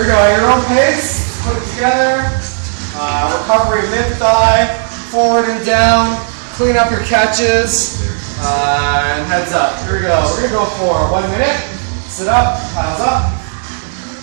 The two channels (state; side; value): silent; left; digital silence